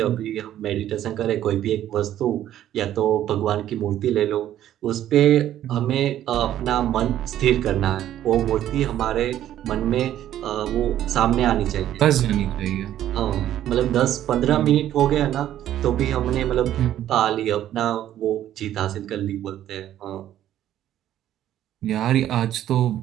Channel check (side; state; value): left; quieter; 12.0 dB